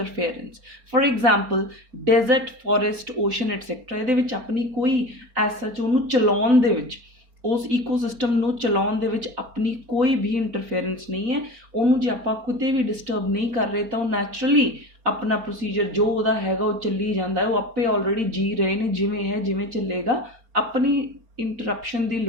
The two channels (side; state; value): left; late; 4.3 ms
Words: For example, desert, forest, ocean, etc. ਇਹਦੇ ਵਿੱਚ ਆਪਣੀ ਕੋਈ ਐਸਾ ਉਹਨੂੰ ਚਲਾਉਣ ਦੇ ਵਿੱਚ, ਉਸ ਈਕੋਸਿਸਟਮ ਨੂੰ ਚਲਾਉਣ ਦੇ ਵਿੱਚ ਆਪਣੀ ਕੋਈ ਵੀ ਇੰਟਰਫੇਰੈਂਸ ਨਹੀਂ ਹੈ। ਉਹਨੂੰ ਜੇ ਆਪਾਂ ਕਿਤੇ ਵੀ ਡਿਸਟਰਬ ਨਹੀਂ ਕਰ ਰਹੇ ਤਾਂ ਉਹ ਨੈਚੁਰਲੀ अपना प्रोसीजर जो ਉਹਦਾ ਹੈਗਾ ਉਹ ਚੱਲੀ ਜਾਂਦਾ ਹੈ, ਉਹ ਆਪੇ ਆਲਰੇਡੀ ਜੀ ਰਹੇ ਨੇ, ਜਿਵੇਂ ਹੈ ਜਿਵੇਂ ਚੱਲੇਗਾ, ਆਪਣੀ ਇੰਟਰਪਸ਼ਨ ਦੀ